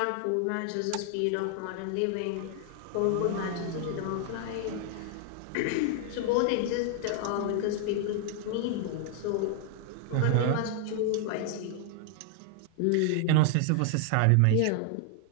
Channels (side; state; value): both; different; correlation 0.00